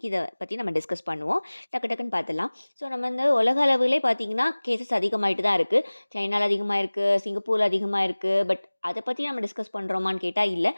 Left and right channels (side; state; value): both; inverted; correlation -1.00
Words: இதை பற்றி நம்ம டிஸ்கஸ் பண்ணுவோம். டக்கு டக்குன்னு பார்த்துடலாம். ஸோ நம்ம உலக அளவிலே பார்த்திங்கன்னா கேசஸ் அதிகமாகிட்டு தான் இருக்குது. சைனாவில் அதிகமாக இருக்குது, சிங்கப்பூரில் அதிகமாக இருக்குது. பட் அதை பற்றி நம்ம டிஸ்கஸ் பண்ணுறோமான்னு கேட்டால் இல்லை.